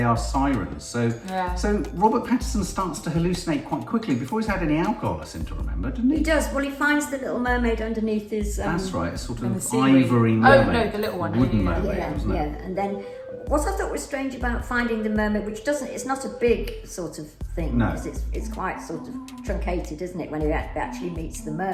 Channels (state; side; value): identical; both; correlation 1.00